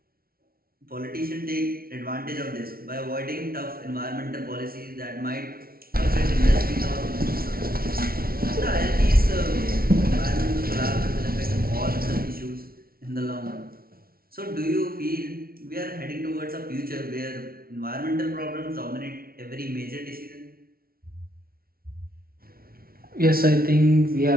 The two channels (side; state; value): left; late; 0.43 ms